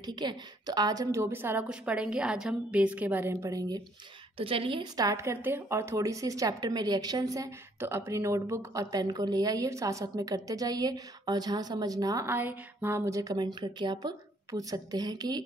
है। तो आज हम जो भी सारा कुछ पढ़ेंगे, आज हम बेस के बारे में पढ़ेंगे। तो चलिए स्टार्ट करते हैं। और थोड़ी सी इस चैप्टर में रिएक्शंस हैं, तो अपनी नोटबुक और पेन को ले आइए, साथ साथ में करते जाइए। और जहाँ समझ ना आए वहाँ मुझे कमेंट करके आप पूछ सकते हैं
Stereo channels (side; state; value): both; normal; correlation 0.65